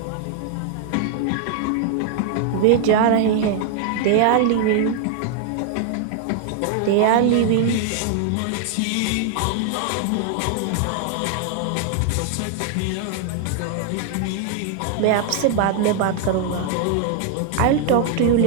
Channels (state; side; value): different; both; correlation 0.00